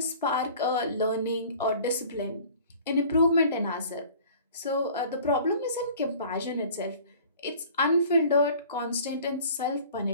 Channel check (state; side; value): inverted; both; correlation -0.48